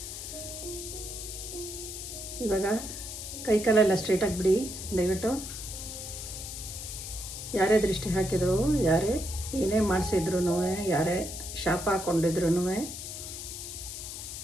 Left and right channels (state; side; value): noise; left; hiss, 8 dB below the sound